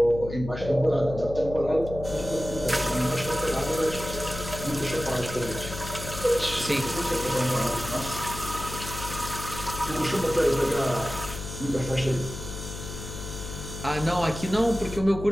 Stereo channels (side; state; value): left; noise; hum, 9 dB below the sound